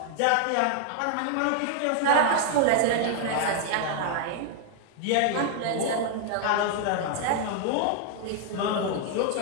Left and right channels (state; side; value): different; both; correlation 0.00